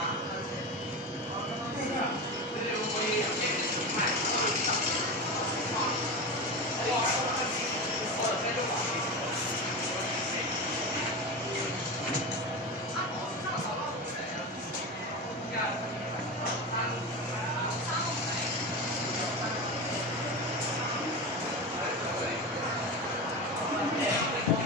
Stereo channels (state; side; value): normal; both; correlation 0.23